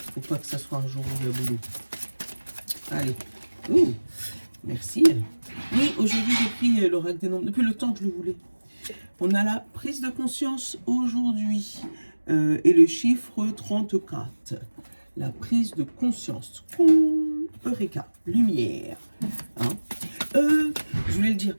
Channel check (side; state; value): both; inverted; correlation -1.00